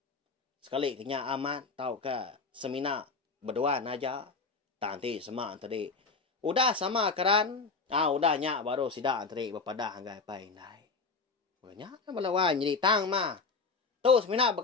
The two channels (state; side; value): quieter; right; 4.4 dB